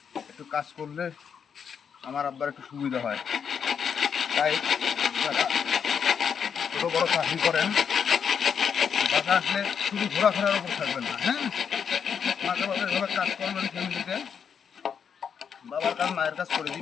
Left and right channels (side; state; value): right; quieter; 7.2 dB